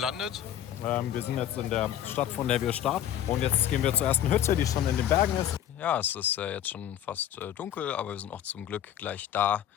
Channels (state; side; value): quieter; right; 10.9 dB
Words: Wir sind jetzt in der Stadt, von der wir starten. Und jetzt gehen wir zur ersten Hütte, die schon in den Bergen ist. Ja, es ist jetzt schon fast dunkel, aber wir sind auch zum Glück gleich da.